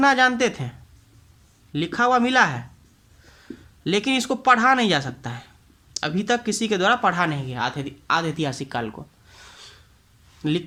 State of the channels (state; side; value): identical; both; correlation 1.00